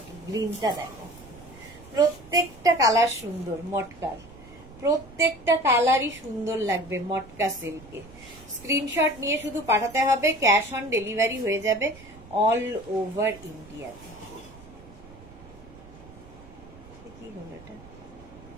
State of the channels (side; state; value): right; noise; rumble, 20 dB below the sound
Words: গ্রিনটা দেখো, প্রত্যেকটা কালার সুন্দর। মটকার প্রত্যেকটা কালারই সুন্দর লাগবে মটকা সিল্কে। স্ক্রিনশট নিয়ে শুধু পাঠাতে হবে, ক্যাশ অন ডেলিভারি হয়ে যাবে অল ওভার ইন্ডিয়াতে। কি হলো এটা?